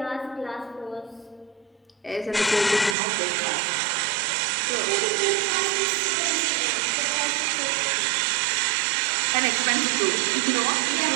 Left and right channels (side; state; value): left; drops out; at 3.0 s